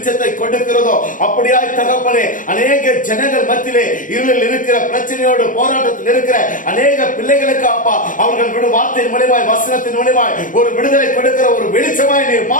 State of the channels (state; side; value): late; right; 0.38 ms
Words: கொடுக்கிறதோ அப்படியாய் தகப்பனே அநேக ஜனங்கள் மத்தியிலே இருளில் இருக்கிற பிரச்சனையோடு போராட்டத்தில் இருக்கிற அநேக பிள்ளைகளுக்கு அப்பா அவர்கள் விடு வார்த்தையின் மூலமாய், வசனத்தின் மூலமாய் ஒரு விடுதலை கொடுக்கிற ஒரு வெளிச்சமாய் நீர்